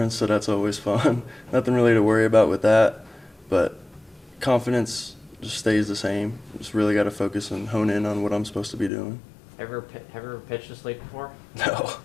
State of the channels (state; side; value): drops out; right; at 8.9 s